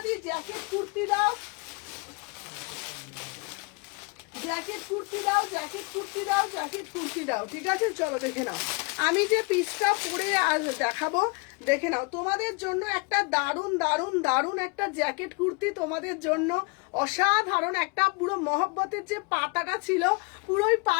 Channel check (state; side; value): quieter; right; 30.3 dB